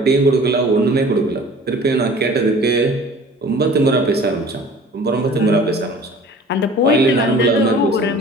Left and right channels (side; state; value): both; normal; correlation 0.46